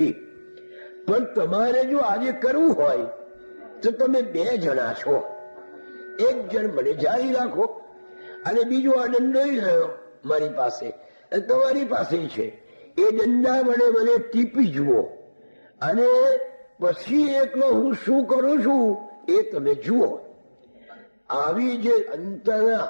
પણ તમારે જો આજે કરવું હોય તો તમે બે જણા છો, એક જણ મને જારી રાખો અને બીજો આ દંડો રહ્યો મારી પાસે, તમારી પાસે છે, એ દંડા વડે મને ટીપી જુઓ અને પછી એકલો હું શું કરું છું એ તમે જુઓ. આવી જે અંતરના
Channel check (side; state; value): both; inverted; correlation -1.00